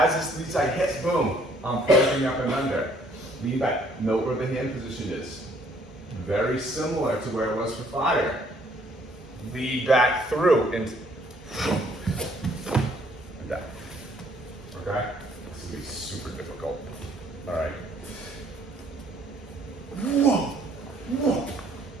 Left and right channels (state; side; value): normal; both; correlation 0.63